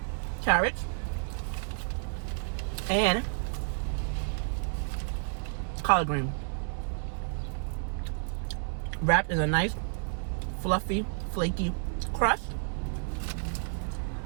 carrots, and collard green, wrapped in a nice, fluffy, flaky crust.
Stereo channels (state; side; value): silent; left; digital silence